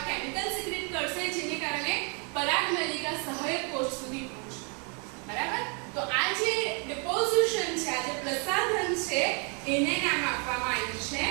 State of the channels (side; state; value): left; quieter; 36.7 dB